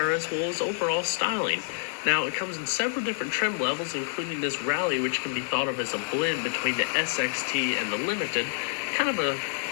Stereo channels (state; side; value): silent; right; 60 dB below the other